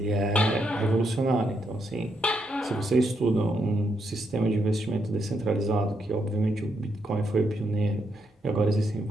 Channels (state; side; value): normal; both; correlation 0.79